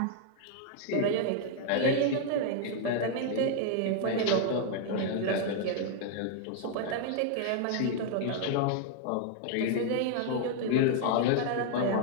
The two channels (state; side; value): different; both; correlation 0.00